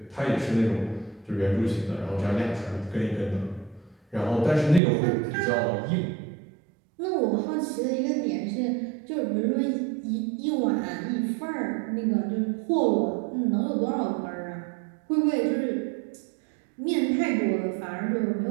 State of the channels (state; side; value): drops out; left; at 4.8 s